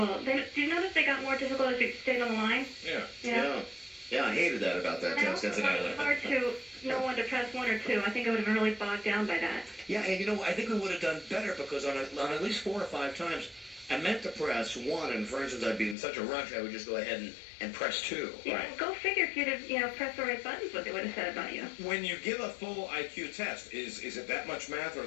Do you notice they got more difficult as you stayed on the line? Yeah. Yeah, I hated that about that test. It's Incidentally. hard to know when to press 1 or 2. I think I would have been really bogged down by that. Yeah, and I think we would have done better because on at least 4 or 5 times, I meant to press 1, and for instance, I'd be in such a rush, I would just go ahead and press 2. Yeah, go figure if you'd have pressed the right buttons, what they would have said about you. When you give a full IQ test, is it that much math,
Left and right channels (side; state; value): right; drops out; at 16.0 s